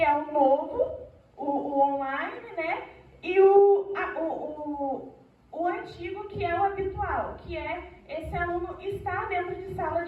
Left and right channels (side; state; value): both; identical; correlation 1.00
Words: é o novo, o online, né? E o antigo, que é o habitual, que é esse aluno estar dentro de sala